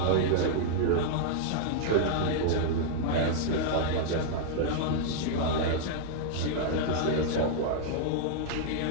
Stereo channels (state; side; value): different; both; correlation -0.01